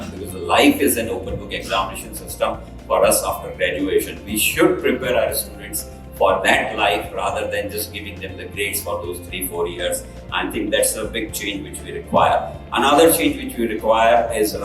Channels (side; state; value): both; identical; correlation 1.00